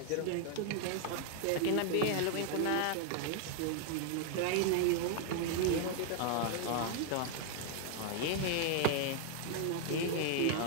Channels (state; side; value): different; both; correlation 0.00